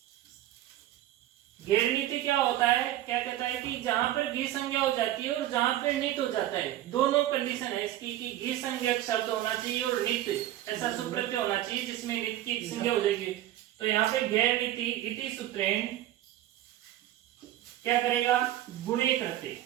घेर नीति क्या होता है, क्या कहता है कि जहां पर घी संज्ञा हो जाती है और जहां पर नित हो जाता है, दोनों कंडीशन है इसकी कि घी संज्ञक शब्द होना चाहिए और नित ऐसा सुप्रत्यय होना चाहिए जिसमें नित की संज्ञा हो जाएगी। तो यहाँ पे घेर नीति इति सूत्रेण क्या करेगा, गुणे करते,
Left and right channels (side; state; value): left; quieter; 13.7 dB